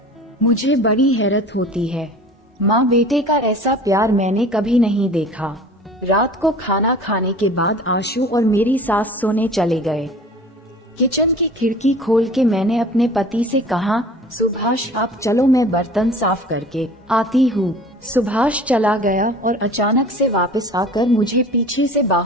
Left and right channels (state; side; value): normal; both; correlation 0.43